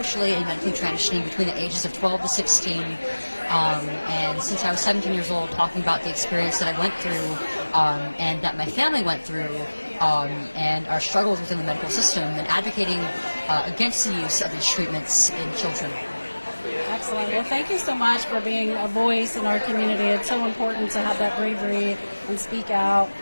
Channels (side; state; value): both; inverted; correlation -1.00